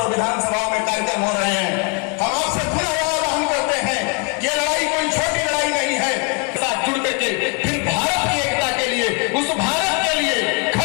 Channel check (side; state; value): right; quieter; 33.0 dB